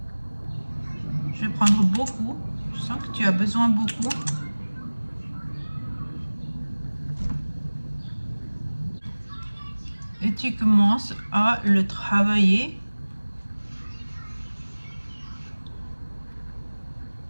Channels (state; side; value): inverted; both; correlation -1.00